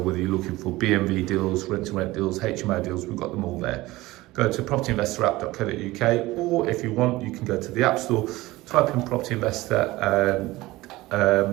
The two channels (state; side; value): quieter; left; 19.0 dB